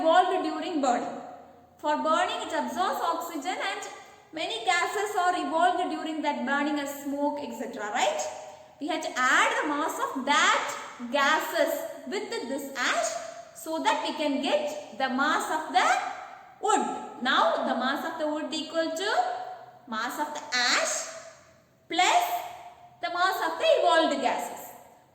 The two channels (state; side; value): identical; both; correlation 1.00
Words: during burning. For burning it absorbs oxygen and many gases are evolved during that burning as smoke, etc. Right? We have to add the mass of that gases with this ash so that we can get the mass of the wood. Now the mass of the wood equal to mass of the ash plus the mass of the evolved gases.